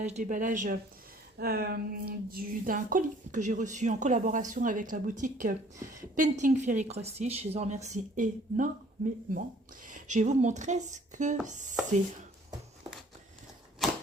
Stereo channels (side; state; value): both; normal; correlation 0.56